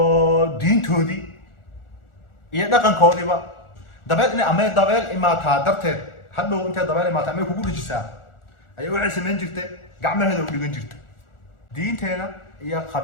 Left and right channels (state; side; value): late; right; 1.4 ms